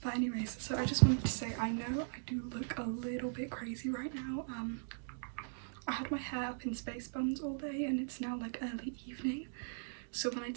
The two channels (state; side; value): silent; left; digital silence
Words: But anyways, so I just wanted to say, I know I do look a little bit crazy right now. I had my hair up in space buns all day and it's now like early evening. So when I